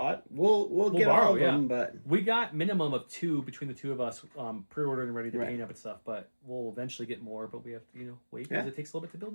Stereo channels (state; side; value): inverted; both; correlation -1.00